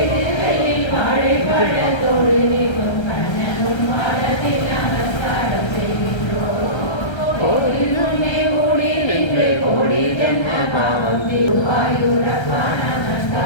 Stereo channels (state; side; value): late; right; 1.3 ms